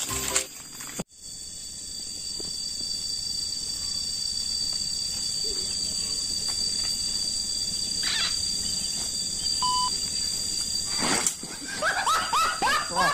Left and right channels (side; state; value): both; identical; correlation 1.00